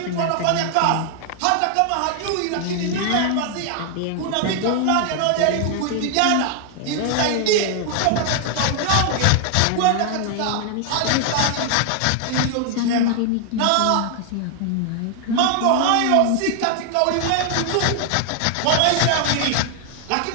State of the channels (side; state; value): both; different; correlation 0.00